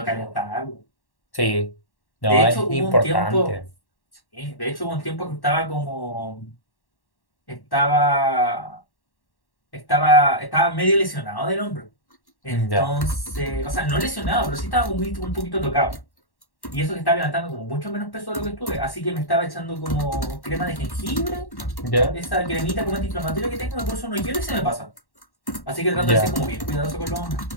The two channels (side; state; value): right; late; 1.1 ms